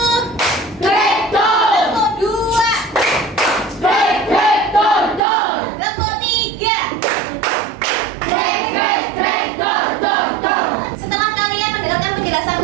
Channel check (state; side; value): drops out; left; at 5.2 s